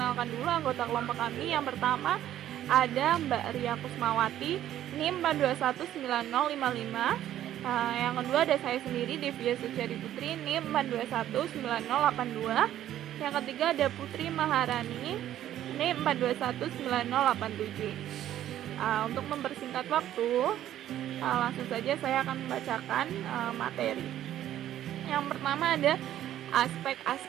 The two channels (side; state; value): left; quieter; 12.1 dB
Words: dulu anggota kelompok kami. Yang pertama ada Mbak Ria Kusmawati, NIM 4219055. Yang kedua ada saya sendiri, Devia Suciadi Putri, NIM 4219082. Yang ketiga ada Putri Maharani, NIM 4219087. Untuk mempersingkat waktu, langsung saja saya akan membacakan materi. Yang pertama ada